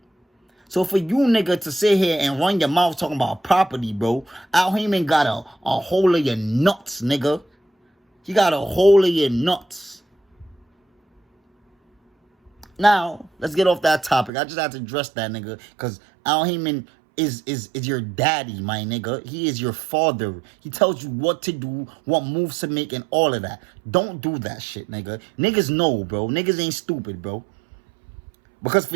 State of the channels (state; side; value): drops out; left; at 14.3 s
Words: So for you, nigga, to sit here and run your mouth talking about property, bro, Al Heyman got a hole of your nuts, nigga. He got a hole of your nuts. Now, let's get off that topic. I just have to address that, nigga, because Al Heyman is your daddy, my nigga. He is your father. He tells you what to do, what moves to make, and all of that. Don't do that shit, nigga. Niggas know, bro. Niggas ain't stupid, bro. Because